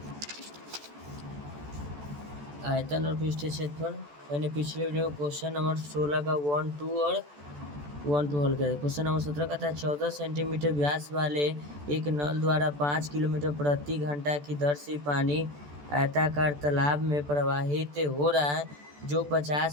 आयतन और पृष्ठीय क्षेत्रफल मैंने पिछले वीडियो में क्वेश्चन नंबर 16 का 1, 2 और 1, 2 हल किया। क्वेश्चन नंबर 17 का था 14 सेंटीमीटर व्यास वाले एक नल द्वारा 5 किलोमीटर प्रति घंटा की दर से पानी आयताकार तालाब में प्रवाहित हो रहा है जो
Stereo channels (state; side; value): late; left; 14 ms